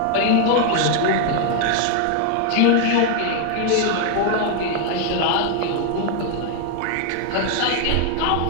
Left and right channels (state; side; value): different; both; correlation 0.00